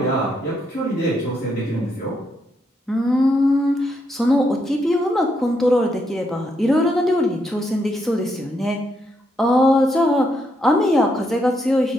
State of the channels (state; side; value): normal; both; correlation 0.78